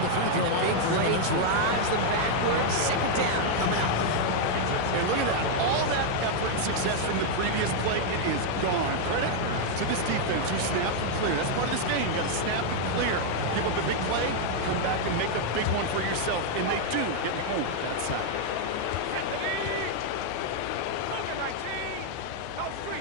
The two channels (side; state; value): both; different; correlation 0.00